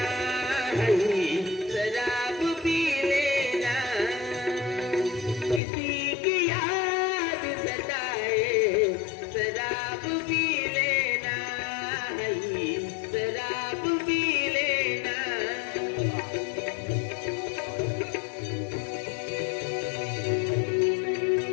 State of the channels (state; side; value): drops out; right; at 5.6 s